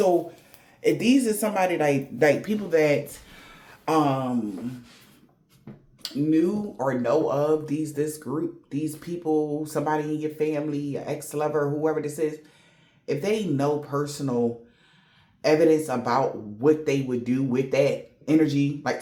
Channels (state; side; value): identical; both; correlation 1.00